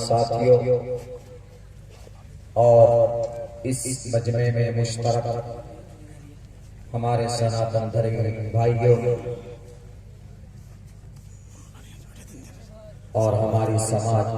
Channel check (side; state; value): both; identical; correlation 1.00